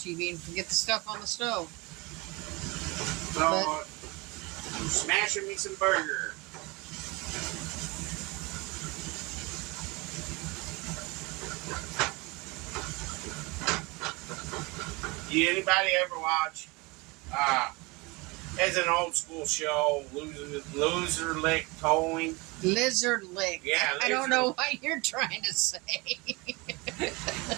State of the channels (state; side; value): quieter; left; 25.6 dB